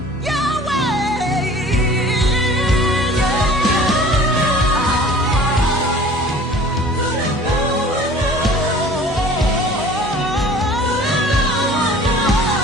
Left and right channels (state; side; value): normal; both; correlation 0.47